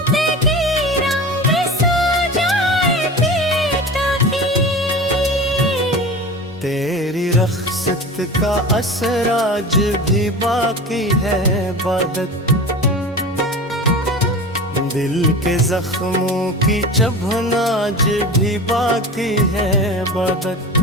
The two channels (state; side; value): normal; both; correlation 0.33